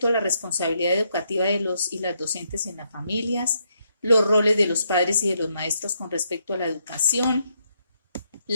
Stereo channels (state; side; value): inverted; both; correlation -0.77